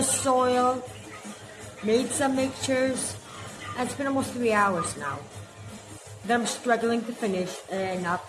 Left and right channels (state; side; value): identical; both; correlation 1.00